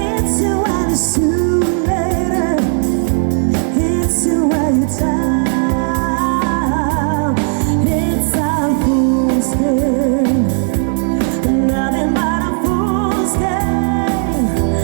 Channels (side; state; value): left; silent; 55 dB below the other